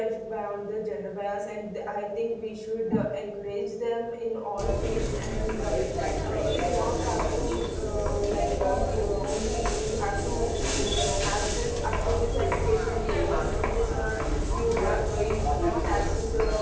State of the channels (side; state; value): both; identical; correlation 1.00